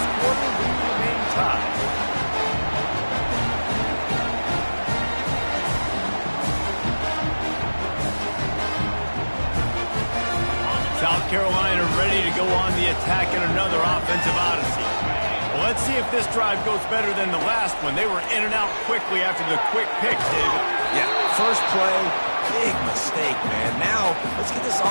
quarter, we remain tied. South Carolina ready to go on the attack in another offensive odyssey. Well, let's see if this drive goes better than the last one. They were in and out quickly after the quick pick, David. Yeah, first play, big mistake, man. Now, let's get this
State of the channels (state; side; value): inverted; both; correlation -1.00